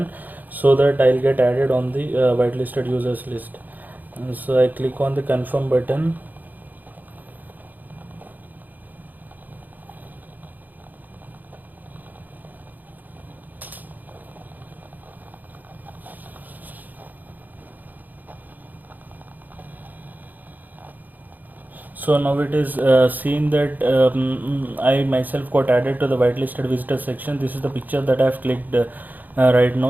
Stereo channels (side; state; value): left; late; 0.084 ms